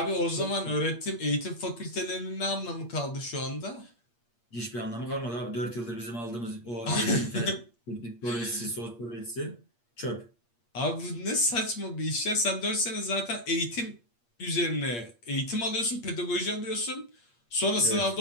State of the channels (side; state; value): right; late; 8.5 ms